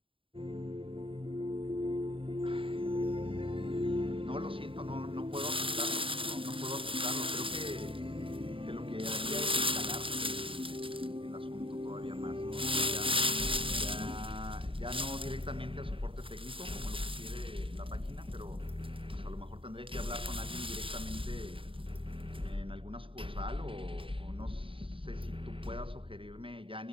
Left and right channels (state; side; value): late; left; 0.25 ms